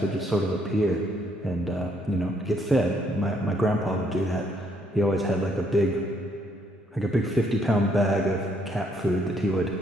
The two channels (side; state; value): both; normal; correlation 0.70